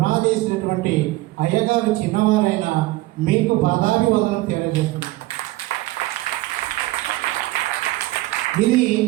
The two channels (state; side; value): quieter; left; 18.8 dB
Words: అయ్యగారు చిన్నవారైన మీకు పాదాభివందనం తెలియజేస్తుంది. ఇది